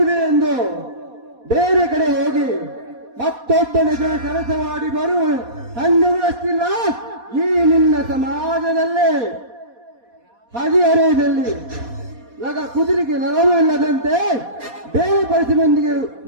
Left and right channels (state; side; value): late; left; 4.2 ms